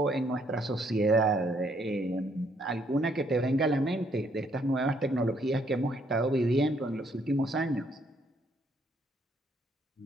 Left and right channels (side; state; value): both; normal; correlation 0.69